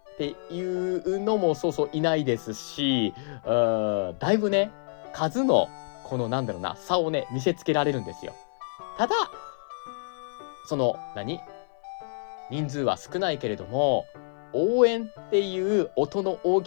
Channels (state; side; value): silent; right; 55 dB below the other